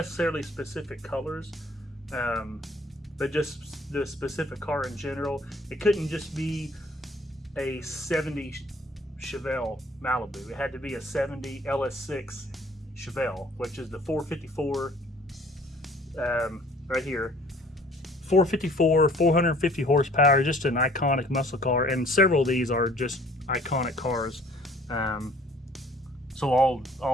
specific colors, but just the specific car in general. It couldn't just be a 70 Chevelle Malibu. It had to be a 70 LS6 Chevelle, which is the 454 right here. 454, 450 horsepower, just an iconic muscle car, and several of these are just iconic cars. So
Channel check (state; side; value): normal; both; correlation 0.55